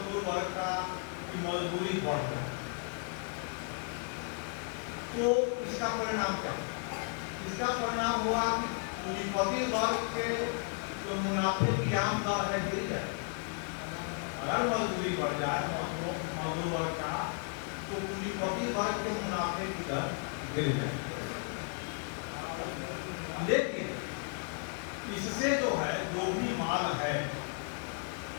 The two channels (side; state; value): right; quieter; 39.7 dB